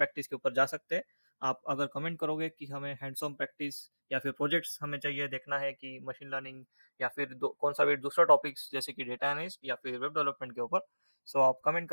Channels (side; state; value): both; inverted; correlation -1.00